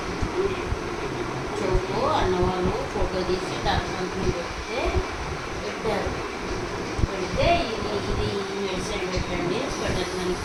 చెవులో అన్నవాళ్ళు ఫోటో తీసి డాక్టర్ అంకుల్ పెట్టారు. పెడితే ఇది మెడిసిన్ పెట్టండి స్వెటర్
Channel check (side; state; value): both; identical; correlation 1.00